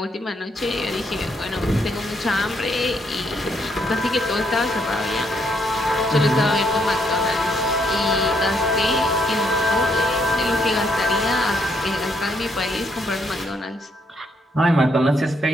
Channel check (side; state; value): both; normal; correlation 0.73